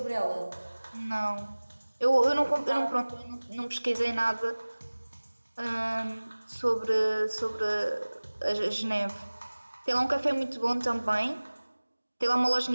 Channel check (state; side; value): inverted; both; correlation -1.00